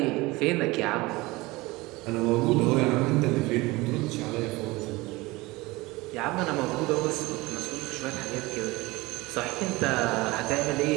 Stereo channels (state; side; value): quieter; left; 21.7 dB